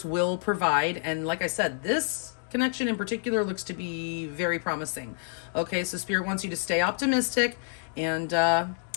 will provide. And like I said, this connection in particular looks to be very promising. Okay, so Spirit wants you to stay optimistic and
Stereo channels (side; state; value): right; silent; digital silence